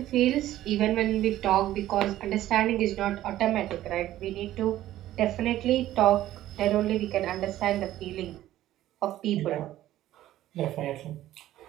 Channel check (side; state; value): left; quieter; 13.9 dB